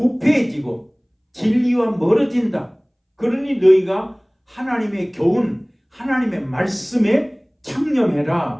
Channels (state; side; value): identical; both; correlation 1.00